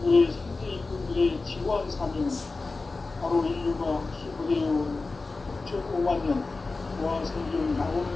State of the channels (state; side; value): quieter; right; 3.7 dB